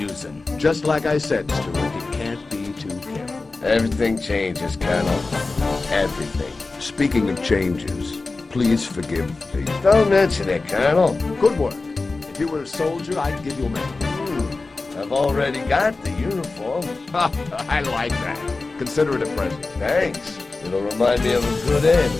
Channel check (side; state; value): right; quieter; 3.6 dB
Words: Just like I said, Stewart, you can't be too careful. Everything changes, Colonel. Everything. Speaking of changes, please forgive me. Don't mention it, Colonel. Good work. If you were a soldier, I'd give you a medal. I've already got the uniform. I like that. Consider it a present. Thanks. It'll remind me of a good end